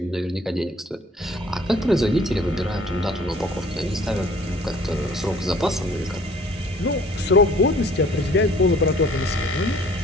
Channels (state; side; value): normal; both; correlation 0.54